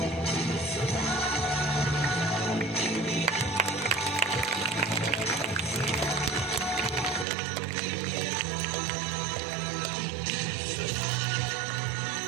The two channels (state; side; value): drops out; left; at 7.2 s